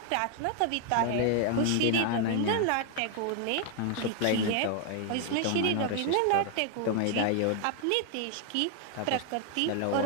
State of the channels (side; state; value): both; different; correlation 0.00